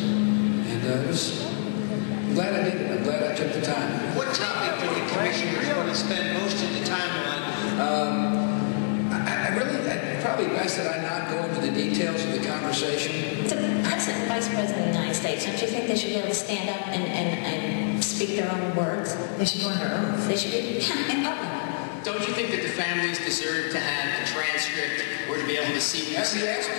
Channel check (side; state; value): right; silent; 61 dB below the other